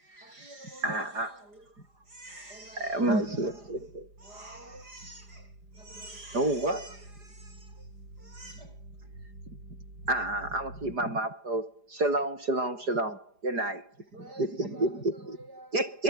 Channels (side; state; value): left; late; 4.9 ms